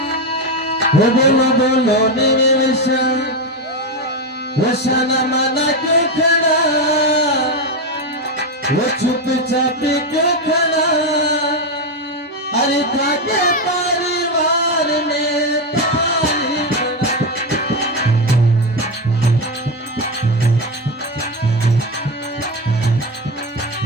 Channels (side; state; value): both; normal; correlation 0.12